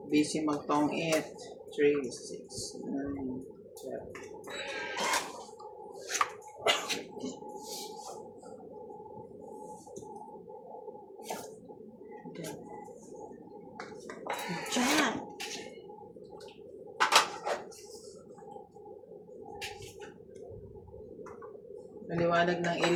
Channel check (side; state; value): both; identical; correlation 1.00